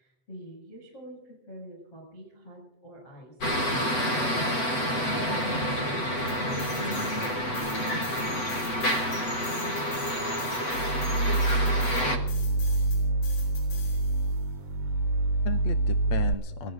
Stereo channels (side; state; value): right; late; 8.0 ms